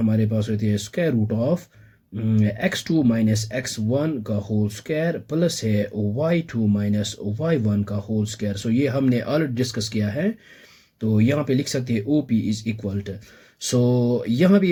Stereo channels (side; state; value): both; identical; correlation 1.00